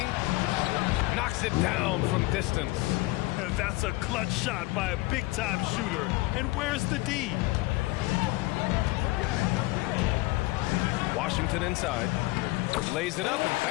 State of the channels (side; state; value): right; quieter; 21.1 dB